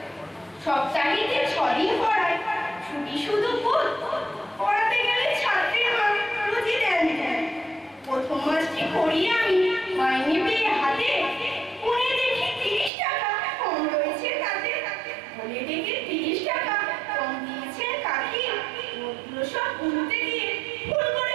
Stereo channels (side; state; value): left; drops out; at 12.9 s